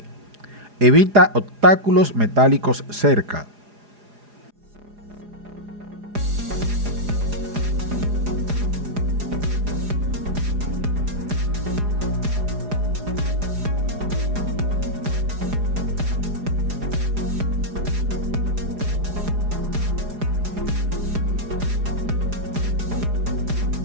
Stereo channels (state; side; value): late; left; 4.8 ms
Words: Evita obstáculos metálicos cerca.